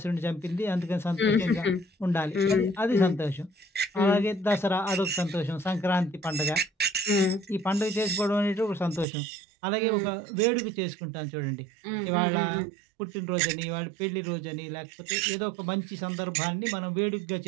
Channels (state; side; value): drops out; left; at 9.1 s